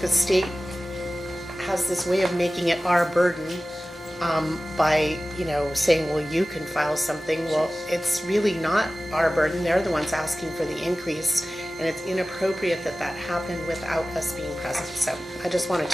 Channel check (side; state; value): both; normal; correlation 0.97